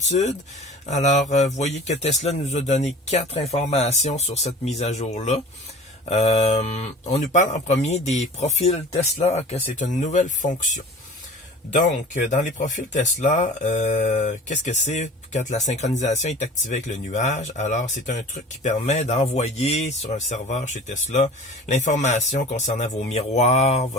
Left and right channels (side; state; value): both; normal; correlation 0.41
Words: Alors, vous voyez que Tesla nous a donné 4 informations sur cette mise à jour-là. On nous parle en premier des profils Tesla, que c'est une nouvelle fonction. Donc, dans les profils Tesla, qu'est-ce que c'est quand la synchronisation est activée avec le nuage? Alors, c'est un truc qui permet d'envoyer sur un serveur chez Tesla l'information concernant vos miroirs,